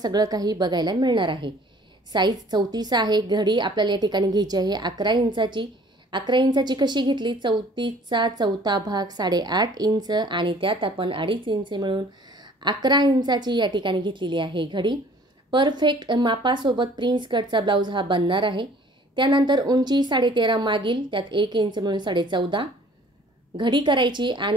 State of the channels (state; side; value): normal; both; correlation 0.53